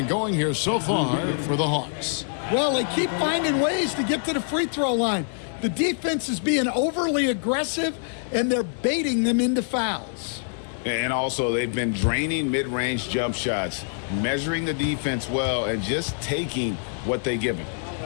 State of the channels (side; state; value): right; silent; digital silence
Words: going here so far for the Hawks. Well, they keep finding ways to get to the free throw line. The defense is being overly aggressive, and they're baiting them into fouls. And also, they've been draining mid-range jump shots, measuring the defense well, and just taking what they give him.